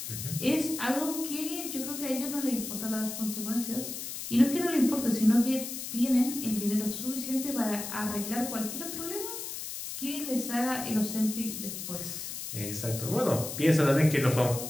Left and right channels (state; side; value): noise; left; hiss, 7 dB below the sound